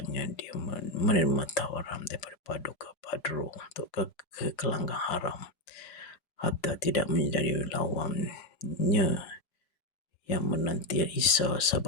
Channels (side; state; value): right; late; 5.0 ms